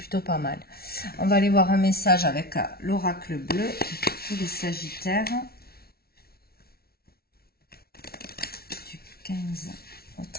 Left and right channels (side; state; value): right; late; 0.44 ms